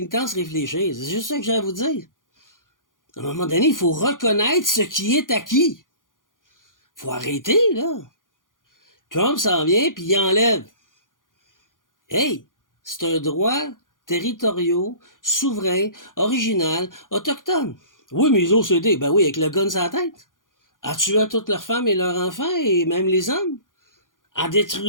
réfléchir. C'est juste ça que j'ai à vous dire. À un moment donné, il faut reconnaître ce qui est acquis. Faut arrêter, là. Trump s'en vient, puis il enlève. Hey, c'est un droit territorial, souverain, original, autochtone. Oui, mais les OCD, ben oui, avec le gun sur la tête. En tuant toutes leurs femmes et leurs enfants, et même les hommes. En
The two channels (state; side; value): late; right; 0.89 ms